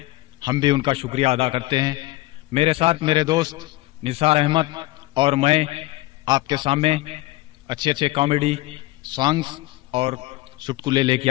हम भी उनका शुक्रिया अदा करते हैं। मेरे साथ मेरे दोस्त निसार अहमद और मैं आपके सामने अच्छे अच्छे कॉमेडी सॉन्ग्स और चुटकुले लेके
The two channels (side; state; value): right; quieter; 19.4 dB